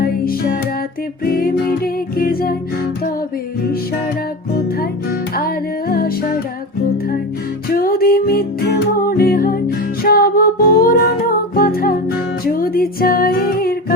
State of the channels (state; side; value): normal; both; correlation 0.25